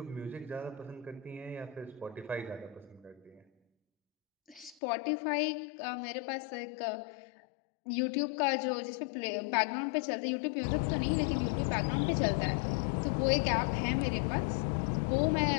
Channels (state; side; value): drops out; right; at 4.8 s